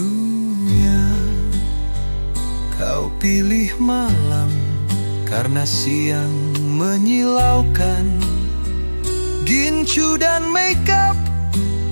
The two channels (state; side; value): inverted; both; correlation -1.00